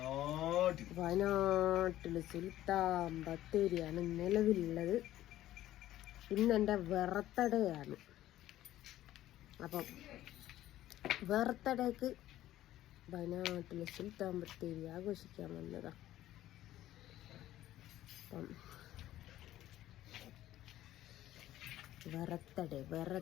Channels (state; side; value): quieter; right; 13.9 dB